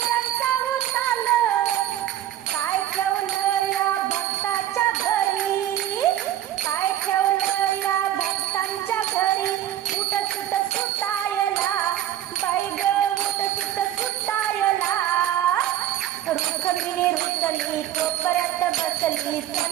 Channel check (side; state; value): left; quieter; 12.2 dB